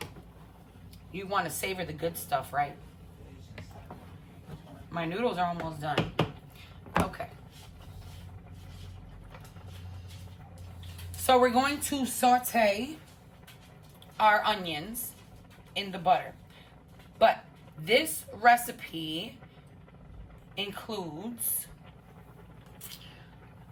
You want to savor the good stuff, right? My noodles are almost done. Okay. So we're going to saute our onions in the butter. But this recipe includes...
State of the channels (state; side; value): identical; both; correlation 1.00